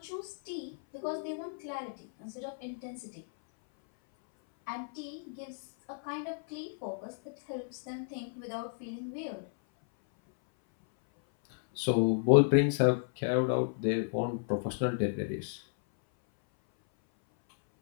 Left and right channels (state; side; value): silent; right; 56 dB below the other